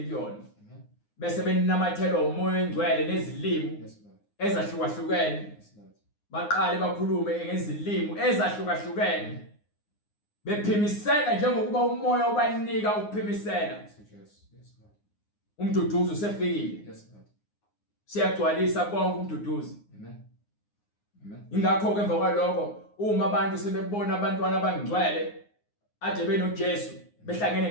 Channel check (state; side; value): late; right; 9.7 ms